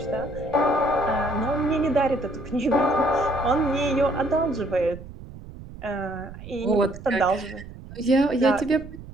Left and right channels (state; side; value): noise; right; rumble, 14 dB below the sound